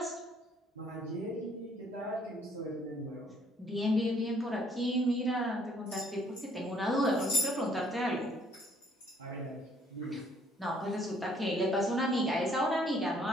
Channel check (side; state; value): both; normal; correlation 0.63